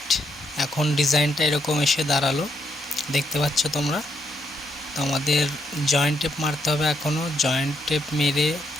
এখন ডিজাইনটা এরকম এসে দাঁড়ালো, দেখতে পাচ্ছ তোমরা। তো আমাদের জয়েন্ট টেপ মারতে হবে, এখনও জয়েন্ট টেপ মেরে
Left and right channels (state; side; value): normal; both; correlation 0.76